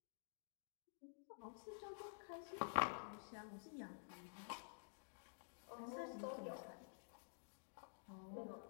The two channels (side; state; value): right; silent; digital silence